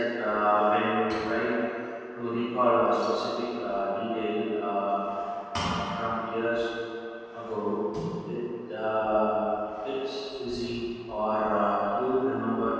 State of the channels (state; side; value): identical; both; correlation 1.00